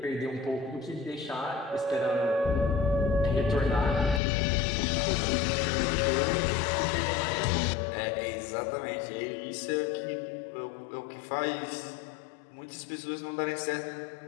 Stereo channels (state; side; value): drops out; right; at 4.2 s